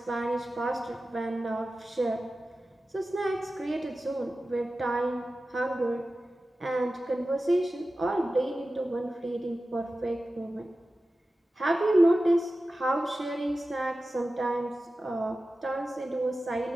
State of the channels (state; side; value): normal; both; correlation 0.94